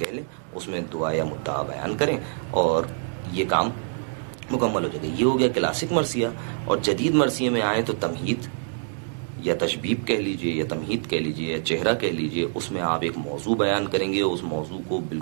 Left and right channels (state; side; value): silent; left; digital silence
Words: لیں، اس میں دعا یا مدعا بیان کریں اور یہ کام مکمل ہو جائے گا۔ یہ ہو گیا کلاسک مرثیہ، اور جدید مرثیے میں آئیں تو تمہید یا تشبیب کہہ لیجئے یا تمہید کہہ لیجئے یا چہرہ کہہ لیجئے، اس میں آپ ایک موضوع بیان کریں گے، اس موضوع کو